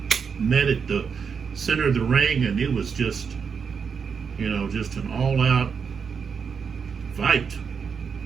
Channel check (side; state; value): left; quieter; 6.2 dB